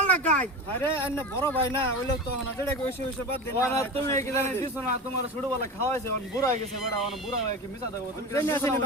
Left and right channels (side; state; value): both; normal; correlation 0.27